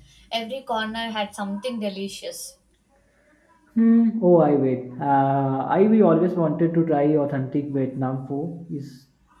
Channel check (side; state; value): both; identical; correlation 1.00